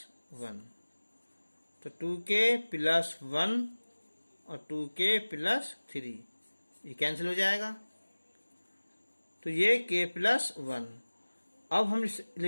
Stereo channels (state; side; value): inverted; both; correlation -1.00